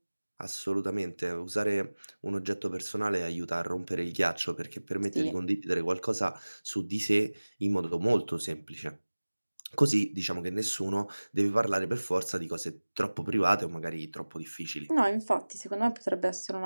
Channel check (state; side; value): inverted; both; correlation -1.00